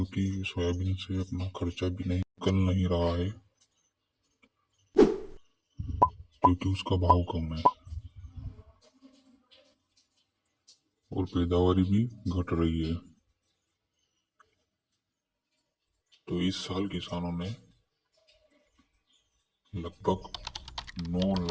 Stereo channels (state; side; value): identical; both; correlation 1.00